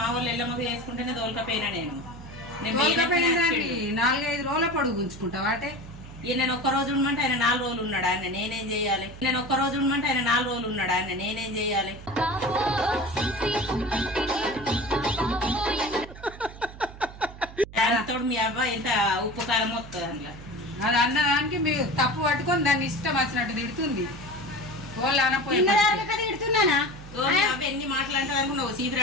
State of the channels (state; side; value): noise; right; hum, 16 dB below the sound